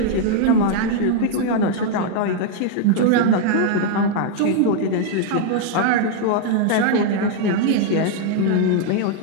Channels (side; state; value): both; different; correlation 0.00